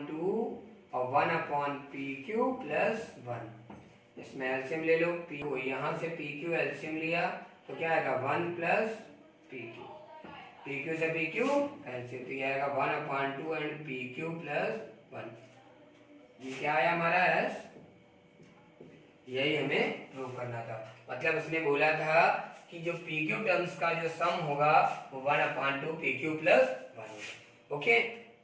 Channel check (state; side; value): identical; both; correlation 1.00